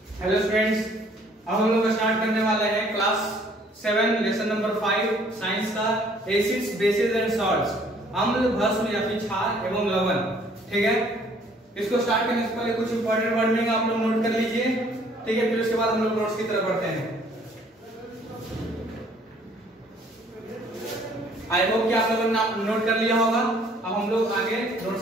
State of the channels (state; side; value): normal; both; correlation 0.59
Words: Hello students, अब हम लोग स्टार्ट करने वाले हैं क्लास 7 लेसन नंबर 5 साइंस का एसिड्स बेसिस एंड सॉल्ट्स, अम्ल भस्म या फिर क्षार एवं लवण। ठीक है, इसको स्टार्ट करने से पहले कुछ इंपॉर्टेंट वर्डिंग आप लोग नोट कर लीजिए। ठीक है, फिर उसके बाद हम लोग नोट्स की तरफ बढ़ते हैं। आई होप कि आप लोगों ने नोट कर लिया होगा। अब हम लोग आगे